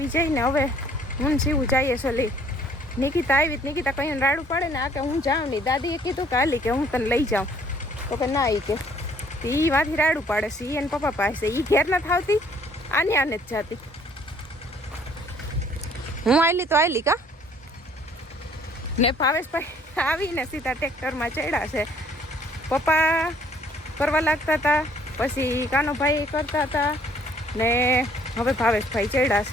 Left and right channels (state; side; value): normal; both; correlation 0.61